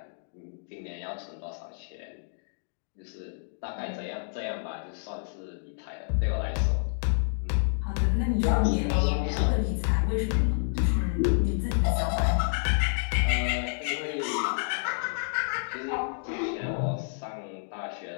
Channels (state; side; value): silent; right; digital silence